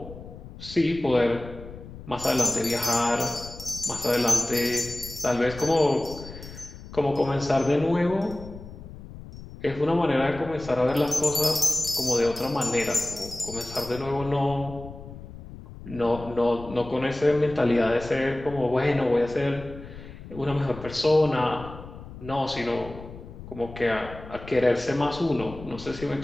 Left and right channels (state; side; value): noise; left; rumble, 14 dB below the sound